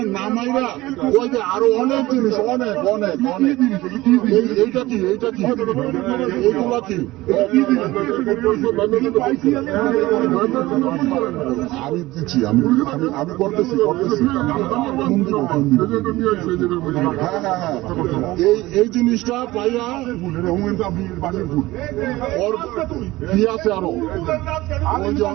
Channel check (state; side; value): quieter; left; 18.5 dB